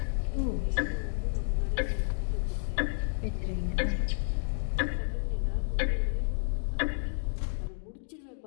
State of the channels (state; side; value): silent; right; 57 dB below the other